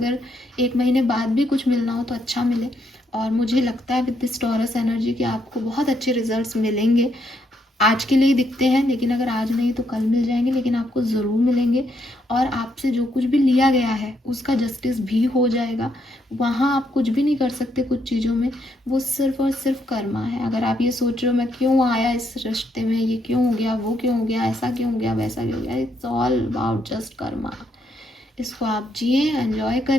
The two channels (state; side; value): normal; both; correlation 0.76